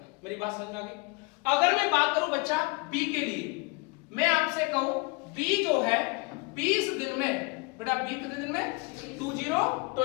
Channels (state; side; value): quieter; right; 28.3 dB